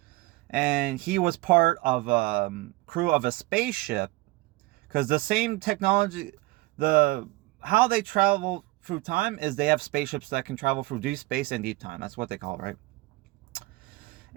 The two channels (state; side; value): quieter; left; 21.4 dB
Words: and he was part of a crew of a spaceship, because the same technology, how they travel through time is they have spaceships that can travel through deep space and deep time. That's what they call it, right?